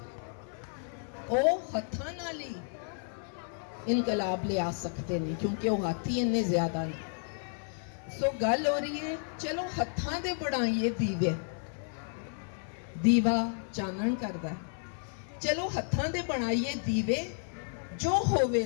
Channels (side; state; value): right; silent; 55 dB below the other